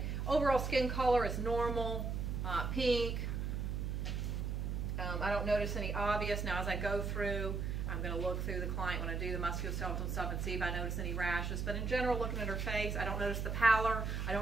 Overall skin color is normal, pink. I don't notice any obvious. Now as I go through, I'm going to look through the client when I do the musculoskeletal stuff and see if I notice any rashes. But in general, looking at her face, I don't notice the pallor. I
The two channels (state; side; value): noise; right; hum, 1 dB below the sound